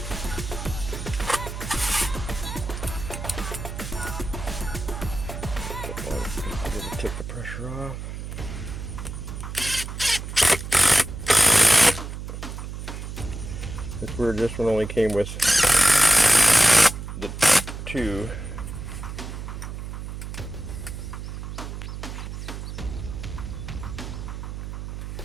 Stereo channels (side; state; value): right; noise; hum, 8 dB below the sound